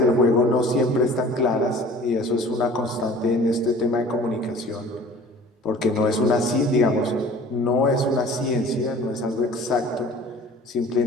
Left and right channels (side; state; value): both; normal; correlation 0.46